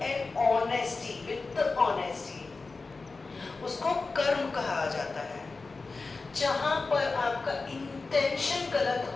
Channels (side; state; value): right; quieter; 3.9 dB